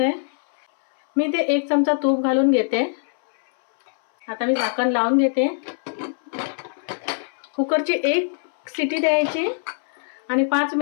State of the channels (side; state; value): right; silent; 61 dB below the other